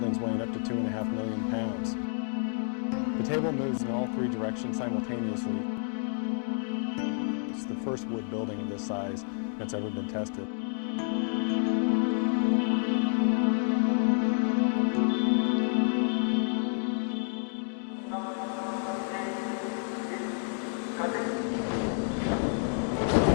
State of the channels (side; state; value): right; silent; 58 dB below the other